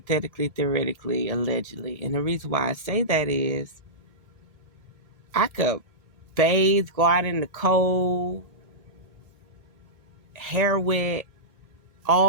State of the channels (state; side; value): late; left; 1.4 ms